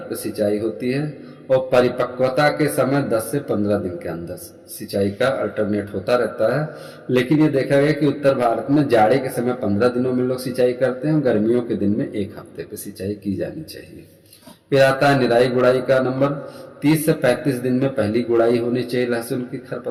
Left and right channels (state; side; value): identical; both; correlation 1.00